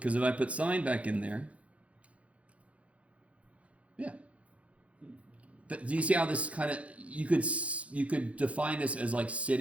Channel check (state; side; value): late; left; 0.064 ms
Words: if I put sine back in there, yeah. But do you see how this kind of, you could define this as like